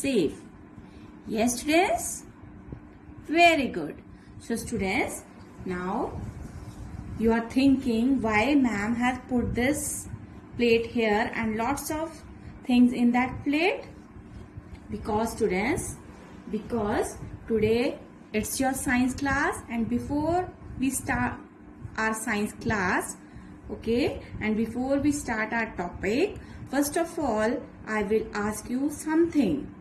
Yes students? Very good. So students, now you are thinking why ma'am has put this plate here and lots of things in that plate? Because students, because today it's your science class and before we start our science class, okay, and before we start our topic, first of all I will ask you something,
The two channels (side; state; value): both; identical; correlation 1.00